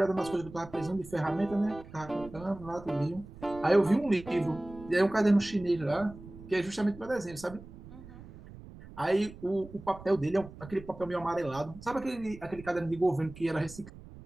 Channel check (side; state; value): right; noise; rumble, 17 dB below the sound